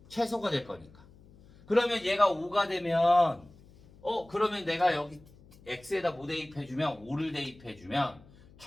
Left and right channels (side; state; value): left; noise; hum, 24 dB below the sound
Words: 최소가 될 거니까. 그러면 얘가 5가 되면 그러면 내가 여기 x에다 뭐 대입해주면 5를 대입해주면